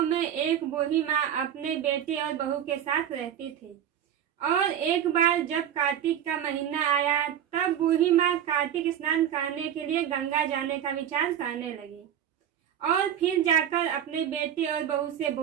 में एक बूढ़ी माँ अपने बेटे और बहू के साथ रहती थी। और एक बार जब कार्तिक का महीना आया तब बूढ़ी माँ कार्तिक स्नान करने के लिए गंगा जाने का विचार करने लगी और फिर जाकर अपने बेटे और बहू से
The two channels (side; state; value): left; quieter; 9.8 dB